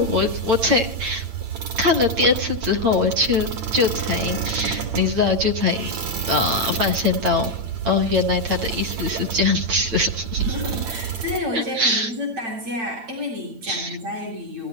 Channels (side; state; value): left; late; 8.8 ms